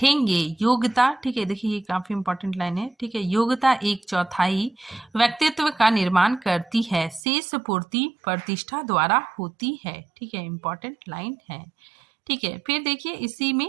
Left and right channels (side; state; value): left; drops out; at 7.2 s